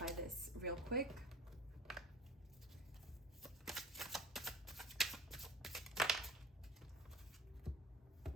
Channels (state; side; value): normal; both; correlation 0.40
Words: this real quick.